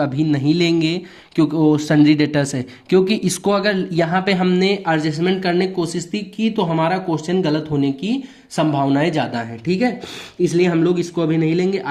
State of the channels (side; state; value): both; identical; correlation 1.00